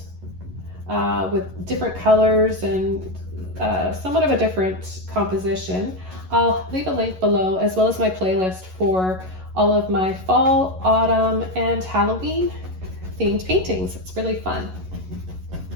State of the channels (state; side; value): late; left; 11 ms